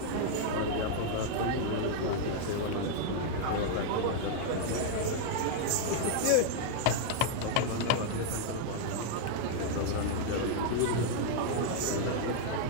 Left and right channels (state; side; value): different; both; correlation 0.00